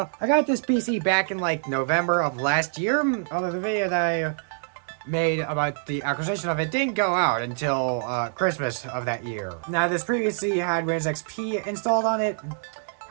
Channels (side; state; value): left; silent; 61 dB below the other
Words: I got this PC back in like November of last year. Although the video that I made about the acquisition of it didn't go out until Christmas of that year. Now, this previously had Windows XP installed on it.